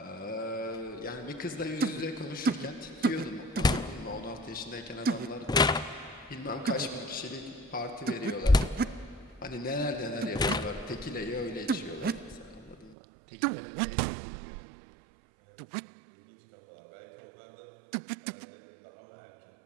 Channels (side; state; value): left; drops out; at 13.0 s